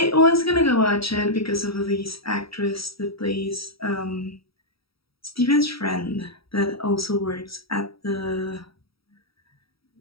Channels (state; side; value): late; right; 0.75 ms